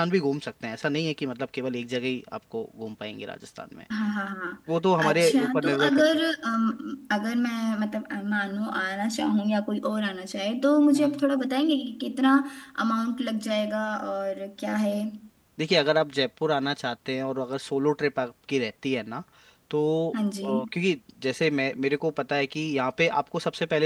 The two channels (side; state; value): both; identical; correlation 1.00